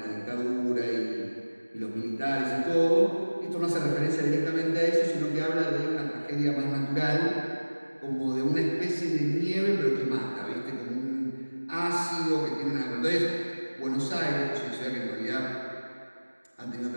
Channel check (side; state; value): both; inverted; correlation -1.00